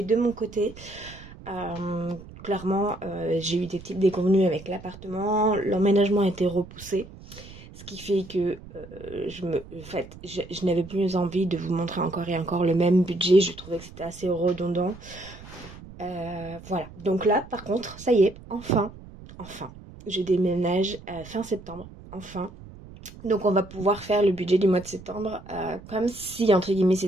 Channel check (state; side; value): noise; right; rumble, 17 dB below the sound